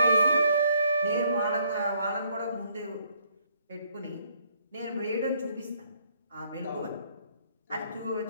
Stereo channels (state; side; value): inverted; both; correlation -0.68